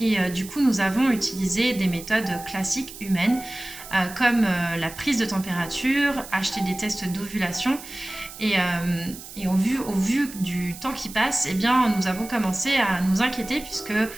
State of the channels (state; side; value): noise; right; hiss, 14 dB below the sound